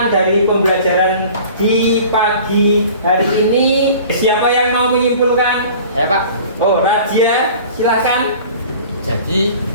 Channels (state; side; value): inverted; both; correlation -0.45